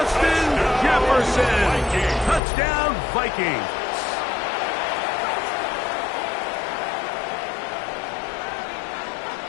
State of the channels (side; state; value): right; drops out; at 2.4 s